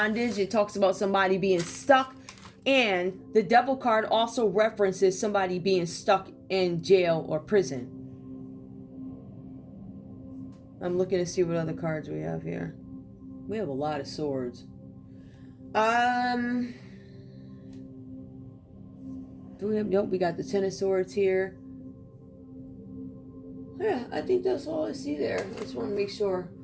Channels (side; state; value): both; identical; correlation 1.00